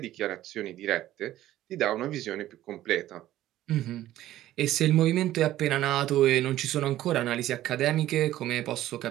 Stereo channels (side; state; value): left; quieter; 14.1 dB